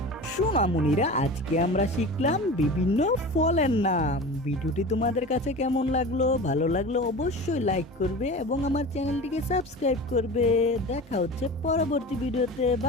সোনামণিরা, আজকে আমরা শিখলাম বিভিন্ন ফলের নাম। ভিডিওটি তোমাদের কাছে কেমন লাগলো? ভালো লাগলো অবশ্যই লাইক করবে এবং আমার চ্যানেলটিকে সাবস্ক্রাইব করবে। দেখা হচ্ছে পরবর্তী ভিডিওতে।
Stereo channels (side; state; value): both; normal; correlation 0.33